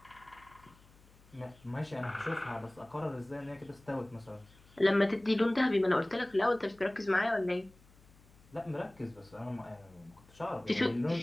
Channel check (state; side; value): noise; left; hum, 26 dB below the sound